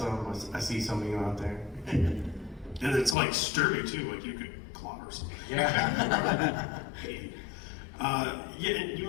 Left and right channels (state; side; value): drops out; right; at 3.2 s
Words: I see some of you out there. And it's like sturdy too, like you could clobber something. Yeah. And you